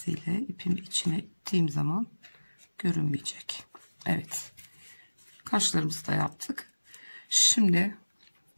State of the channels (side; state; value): both; inverted; correlation -1.00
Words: ipimi içine ittiğim zaman görünmeyecek. Evet. Kaşlarımızı da yaptık. Şimdi